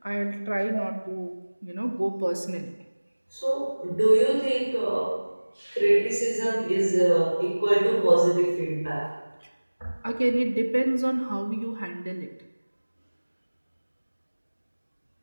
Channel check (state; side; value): inverted; both; correlation -1.00